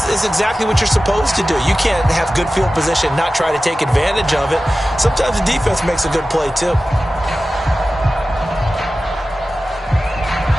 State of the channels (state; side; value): normal; both; correlation 0.95